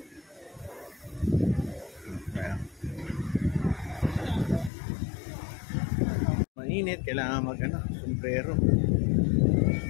Mainit, kailangan sombrero.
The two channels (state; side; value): drops out; right; at 4.7 s